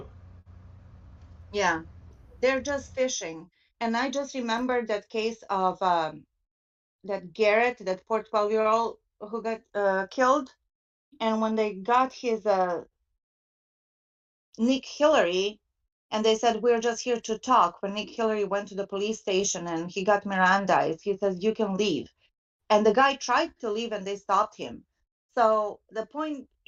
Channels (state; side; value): identical; both; correlation 1.00